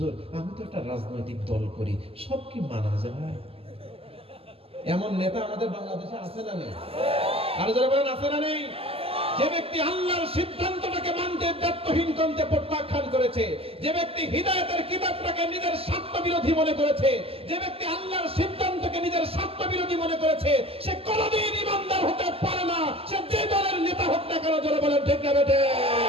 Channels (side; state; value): left; late; 0.28 ms